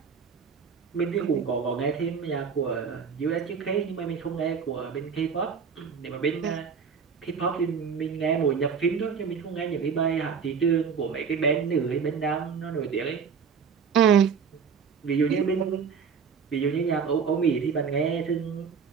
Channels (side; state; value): left; quieter; 6.3 dB